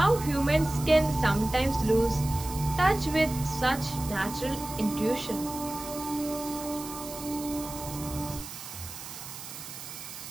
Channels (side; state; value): right; noise; hiss, 11 dB below the sound